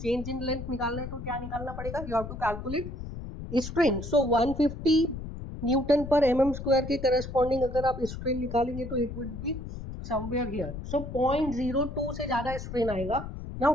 Change in length निकालना है तो क्या निकालना पड़ेगा? You have to calculate strain. So 150 newton पर mm स्क्वायर के करस्पॉन्डिंग अगर आप स्ट्रेन निकालेंगे तो it would be somewhere here. So 0.02 से ज्यादा स्ट्रेन आएगा. नाउ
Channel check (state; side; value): noise; left; rumble, 8 dB below the sound